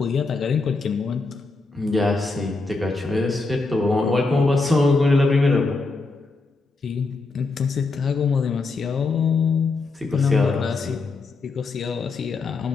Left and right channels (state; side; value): quieter; right; 3.7 dB